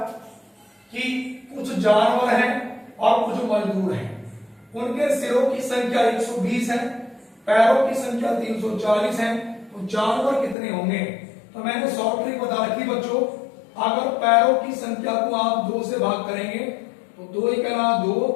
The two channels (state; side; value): drops out; right; at 10.6 s